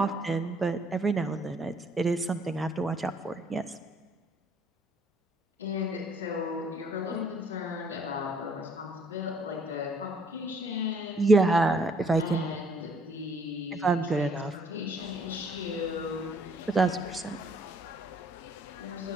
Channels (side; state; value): both; normal; correlation 0.64